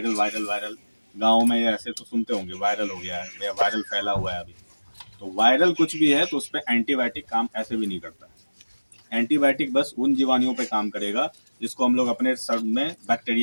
वायरल वायरल, गाँव में ऐसे तो सुनते होंगे वायरल हो गया है या वायरल फैला हुआ है अभी। तो वायरल कुछ भी है तो उस पर एंटीबायोटिक काम ऐसे भी नहीं करता है। एंटीबायोटिक बस उन जीवाणुओं पे काम करेगा जिसको हम लोग अपने शब्द में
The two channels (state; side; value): inverted; both; correlation -1.00